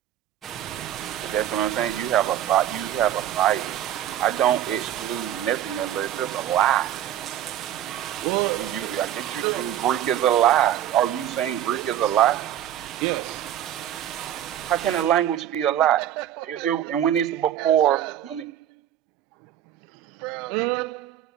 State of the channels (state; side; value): quieter; left; 11.4 dB